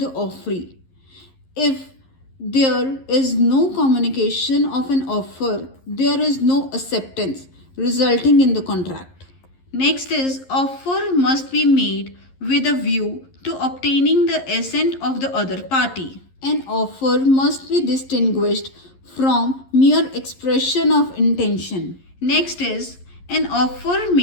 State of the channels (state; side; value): late; right; 11 ms